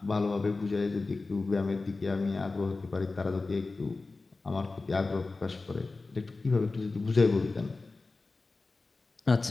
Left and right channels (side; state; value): right; quieter; 3.6 dB